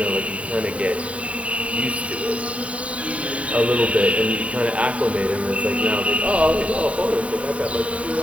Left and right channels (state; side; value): late; left; 0.065 ms